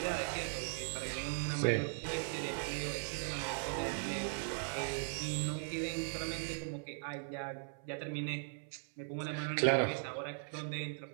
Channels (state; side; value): silent; left; 52 dB below the other